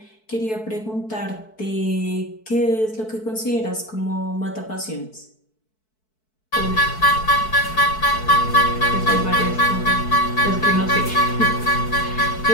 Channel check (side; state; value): right; late; 4.6 ms